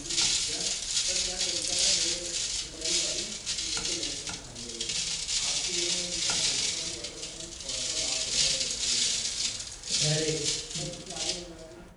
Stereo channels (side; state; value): both; identical; correlation 1.00